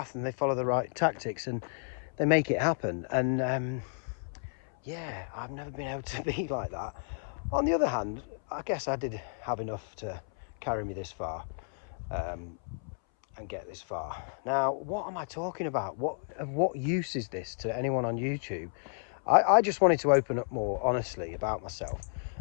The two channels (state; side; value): silent; right; 57 dB below the other